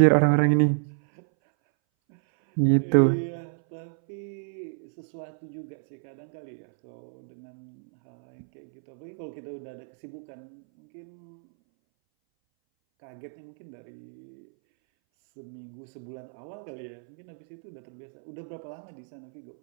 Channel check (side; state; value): left; silent; 58 dB below the other